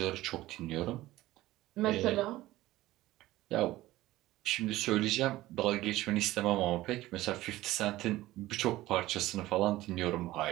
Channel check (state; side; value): quieter; left; 16.7 dB